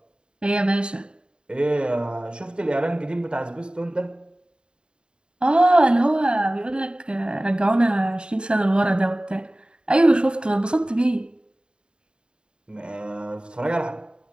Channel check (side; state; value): left; late; 0.050 ms